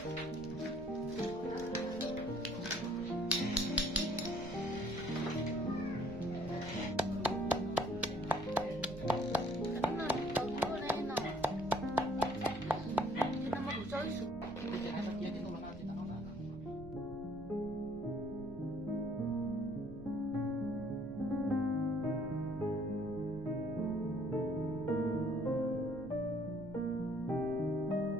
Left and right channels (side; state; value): right; noise; rumble, 15 dB below the sound